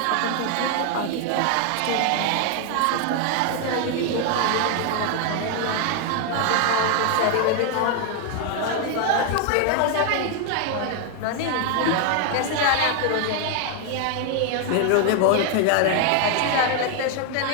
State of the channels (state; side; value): different; both; correlation 0.00